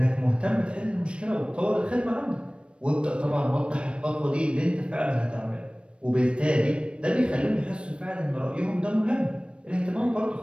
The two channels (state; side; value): late; left; 0.058 ms